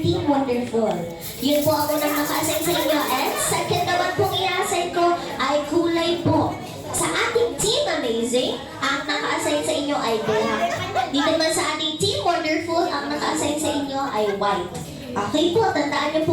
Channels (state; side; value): identical; both; correlation 1.00